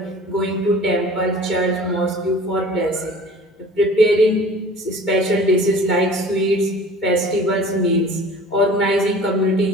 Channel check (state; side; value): normal; both; correlation 0.44